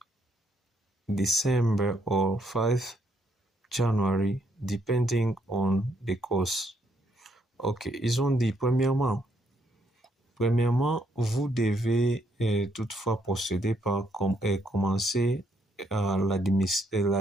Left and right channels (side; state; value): both; normal; correlation 0.73